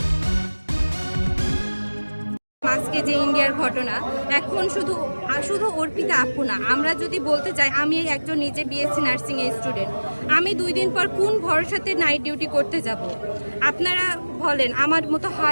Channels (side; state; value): both; inverted; correlation -1.00